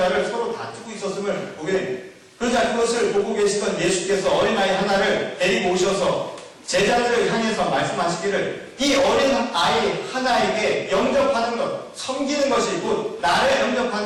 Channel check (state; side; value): identical; both; correlation 1.00